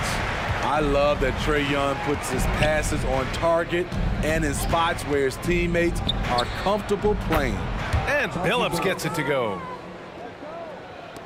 I love that Trae Young puts his passes on target and in spots where his teammates are comfortable playing. And Billups gets it to go.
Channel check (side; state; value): both; identical; correlation 1.00